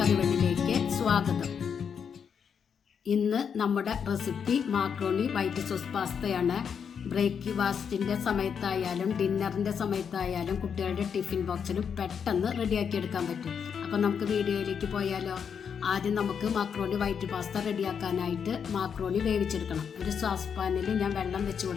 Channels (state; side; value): quieter; right; 7.1 dB